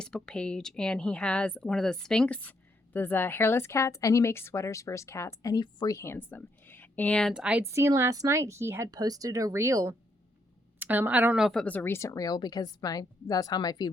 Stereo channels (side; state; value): both; normal; correlation 0.75